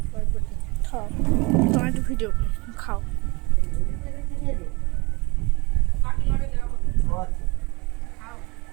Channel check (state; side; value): quieter; left; 26.2 dB